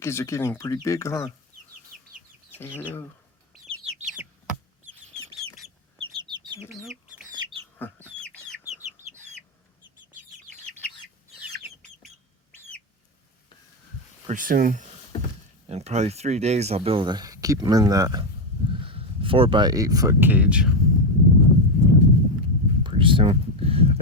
are getting pretty big, huh? Say hello. Hello. Pretty soon, in probably 3 days, I'll be able to keep them in that 4x8 foot cage. Pretty soon.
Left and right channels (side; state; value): both; normal; correlation 0.08